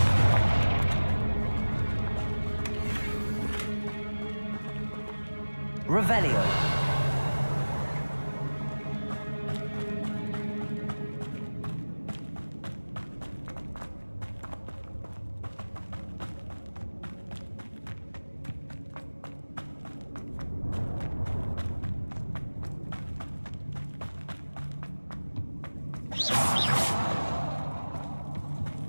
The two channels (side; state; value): both; inverted; correlation -1.00